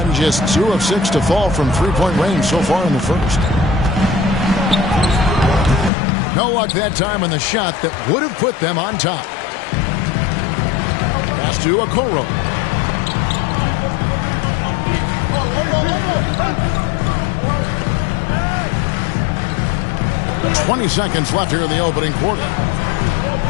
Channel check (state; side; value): drops out; right; at 5.9 s